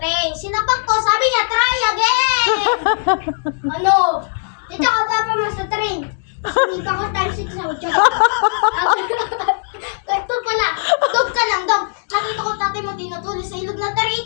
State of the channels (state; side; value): silent; right; digital silence